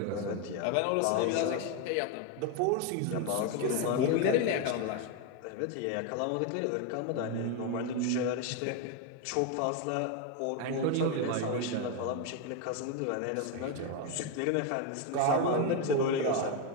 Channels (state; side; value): different; both; correlation 0.02